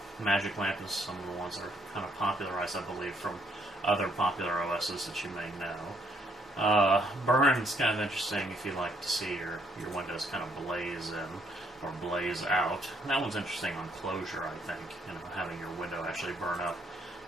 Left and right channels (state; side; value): normal; both; correlation 0.70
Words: Magic Lamp is some of the ones that are kind of popularized, I believe, from other popular OSs that you may know. Burn is kind of interesting if you like to see your windows kind of blaze in or blaze out. That one's interesting on closure, I think, having your window actually burn up